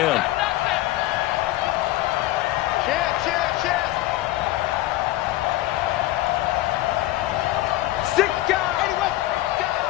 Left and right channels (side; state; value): right; quieter; 16.5 dB